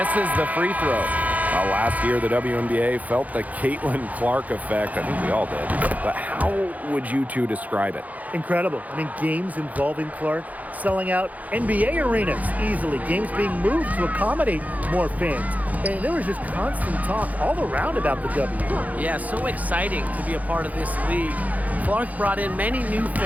the free throw. Last year, the WNBA felt the Caitlin Clark effect. I think we all did. But how would you two describe it? Incredible. I mean, games involving Clark selling out NBA arenas easily. Games being moved to accommodate more fans. And there was just constant talk all around about the W. Yeah, so exciting to be a part of this league. Clark brought in many new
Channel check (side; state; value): left; late; 0.076 ms